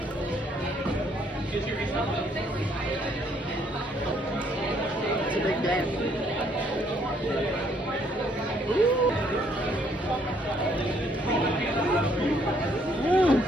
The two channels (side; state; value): both; normal; correlation 0.67